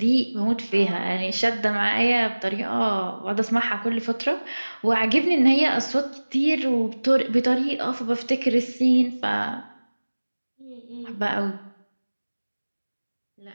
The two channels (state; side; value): inverted; both; correlation -1.00